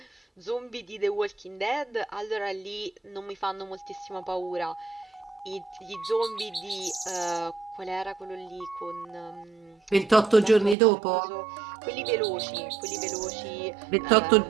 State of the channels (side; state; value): left; drops out; at 10.8 s